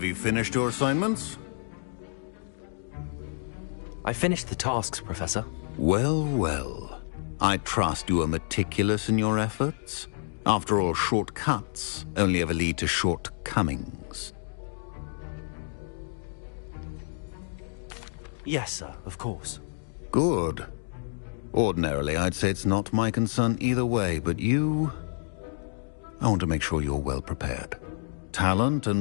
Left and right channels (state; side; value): silent; right; digital silence